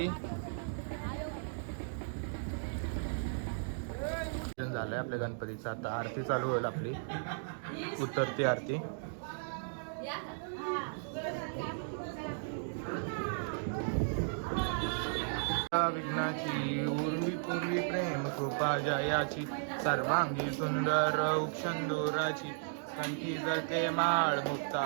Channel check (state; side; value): silent; left; digital silence